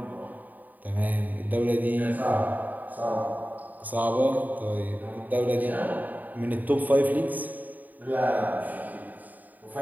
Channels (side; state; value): left; late; 0.083 ms